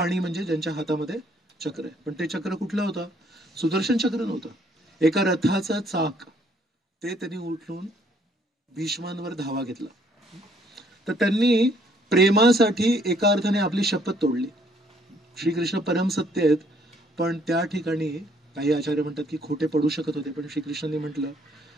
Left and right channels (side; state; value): both; normal; correlation 0.65